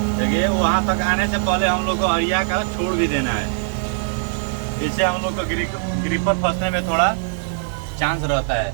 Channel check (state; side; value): silent; left; digital silence